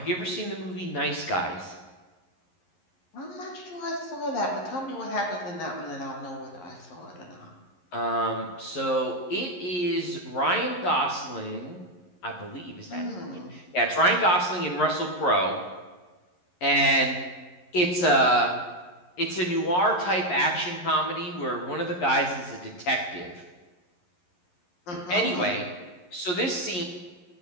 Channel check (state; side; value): late; right; 11 ms